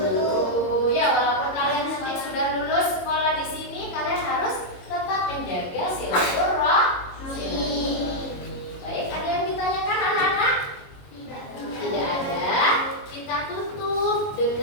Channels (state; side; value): late; right; 22 ms